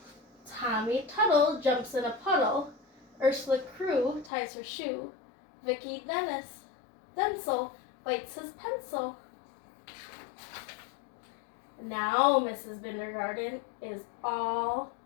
Tommy Tuttle jumps in a puddle. Ursula Crew ties her shoe. Vicki Denzel bites his pencil. Now Mrs. Bindergarten is all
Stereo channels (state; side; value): drops out; right; at 4.3 s